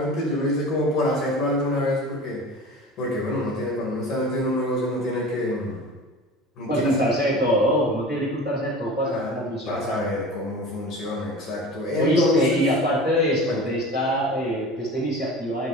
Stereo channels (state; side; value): normal; both; correlation 0.36